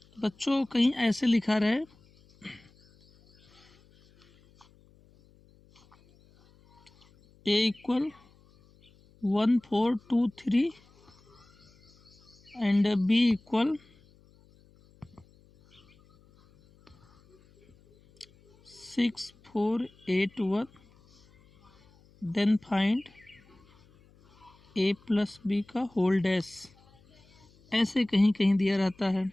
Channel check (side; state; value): left; noise; hum, 29 dB below the sound